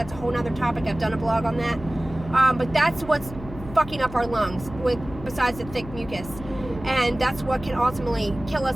a whole nother topic. I've done a blog on that. But that's what's fucking up our lungs, besides the thick mucus. And that's what can ultimately kill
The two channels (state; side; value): noise; left; hum, 14 dB below the sound